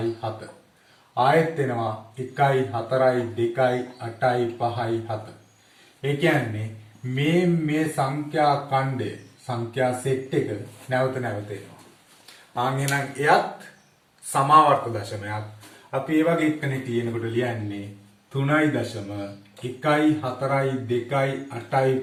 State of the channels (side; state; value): both; identical; correlation 1.00